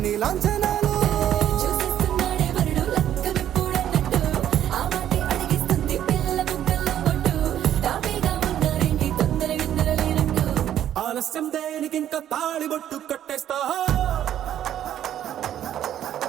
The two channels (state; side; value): quieter; left; 11.0 dB